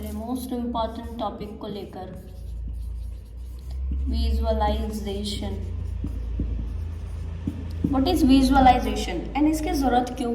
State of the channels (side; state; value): both; identical; correlation 1.00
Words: लिए मोस्ट इम्पॉर्टेंट टॉपिक को लेकर, visualization. What is visualization and इसकी ज़रूरत क्यों